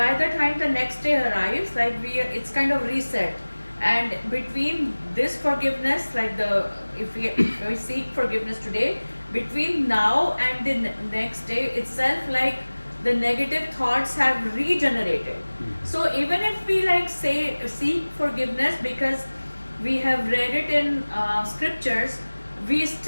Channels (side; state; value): both; inverted; correlation -1.00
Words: the time the next day arrives, like it's kind of reset. And between this forgiveness, like if we seek forgiveness today, between now and the next day itself, like the negative thoughts have regenerated. So even if we seek forgiveness because we have read it in scriptures, we